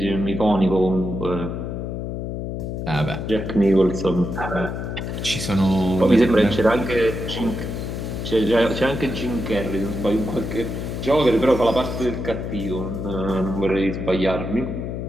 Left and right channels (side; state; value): left; noise; hum, 5 dB below the sound